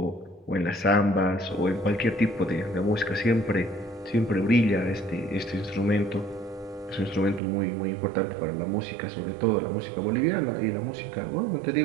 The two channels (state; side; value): drops out; left; at 7.4 s